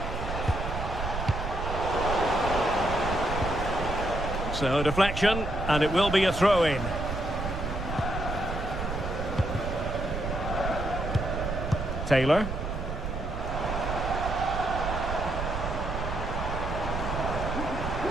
So deflection, and it will be a throw-in. Taylor.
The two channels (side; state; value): right; noise; rumble, 4 dB below the sound